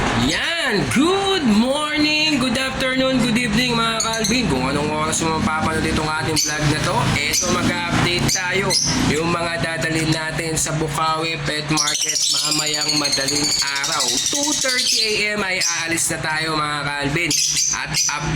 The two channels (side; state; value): both; identical; correlation 1.00